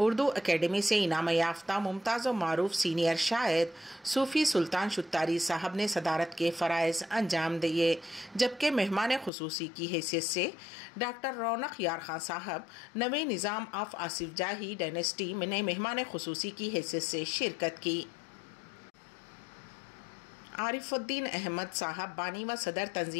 اکیڈمی سے انعام یافتہ ممتاز و معروف سینئر شاعر صوفی سلطان شتاری صاحب نے صدارت کے فرائض انجام دیے، جبکہ مہمان خصوصی کی حیثیت سے ڈاکٹر رونق یار خان صاحب نویں نظام آف آصف جاہی ڈائنسٹی نے مہمان خصوصی کی حیثیت سے شرکت کی۔ عارف الدین احمد صاحب بانی و صدر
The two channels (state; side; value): drops out; right; at 9.3 s